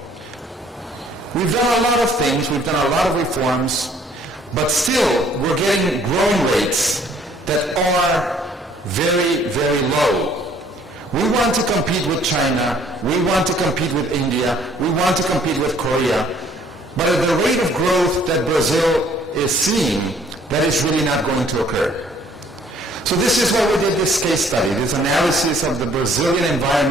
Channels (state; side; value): normal; both; correlation 0.60